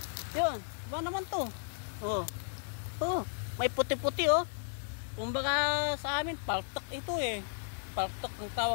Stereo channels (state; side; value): silent; right; digital silence